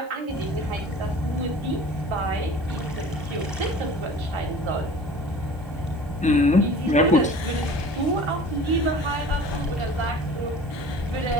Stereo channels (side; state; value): right; noise; hiss, 30 dB below the sound